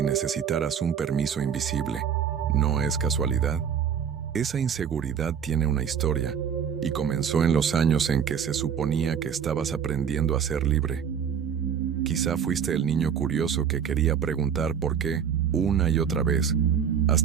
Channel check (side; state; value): left; quieter; 7.7 dB